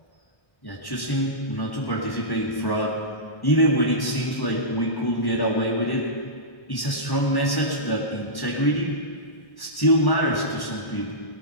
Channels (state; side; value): late; right; 1.1 ms